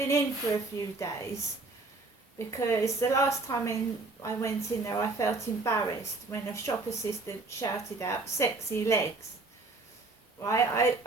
in for a few days, because the last time I went in there I felt embarrassed when a shop assistant shouted out "sexy legs." Right,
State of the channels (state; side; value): quieter; left; 3.4 dB